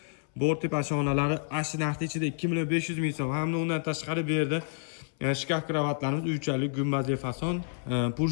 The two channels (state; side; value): silent; right; 58 dB below the other